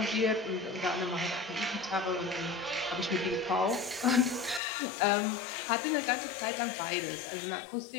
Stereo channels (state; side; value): drops out; right; at 4.6 s